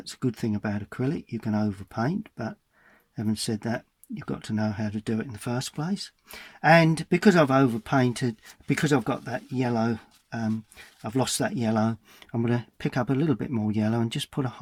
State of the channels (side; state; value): both; identical; correlation 1.00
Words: a good thing about acrylic. You can overpaint, but having said that, you've got to know how to do it in the first place. And because I've overpainted, because I've got that yellow, I've lost that yellow, I'm going to pick up a little bit more yellow and just put a